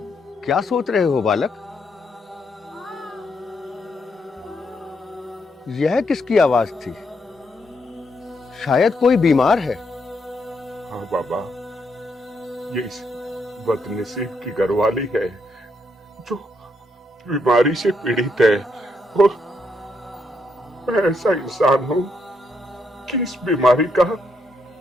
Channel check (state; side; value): normal; both; correlation 0.77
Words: क्या सोच रहे हो बालक? यह किसकी आवाज थी? शायद कोई बीमार है। हाँ बाबा, ये इस बदनसीब की घरवाली है जो बीमारी से पीड़ित है, और मैं ऐसा इंसान हूं कि इस बीमारी का